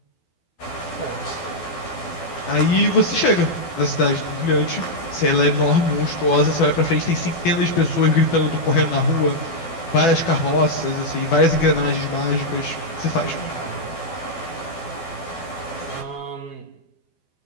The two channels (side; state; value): right; late; 12 ms